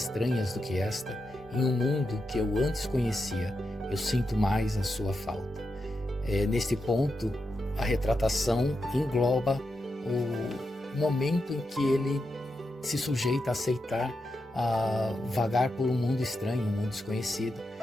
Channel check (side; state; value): both; normal; correlation 0.87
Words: do que esta, em um mundo que eu antes conhecia, eu sinto mais a sua falta. Neste ponto, a retratação engloba o momento em que ele se sujeita a aceitar a vagar por um mundo estranho, um mundo desconhecido,